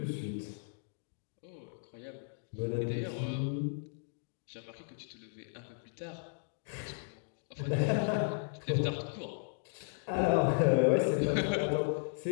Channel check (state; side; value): silent; right; digital silence